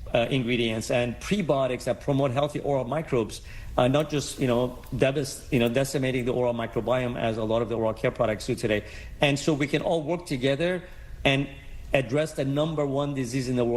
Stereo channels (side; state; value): both; identical; correlation 1.00